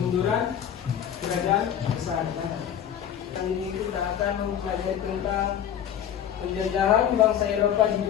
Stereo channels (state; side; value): quieter; right; 9.5 dB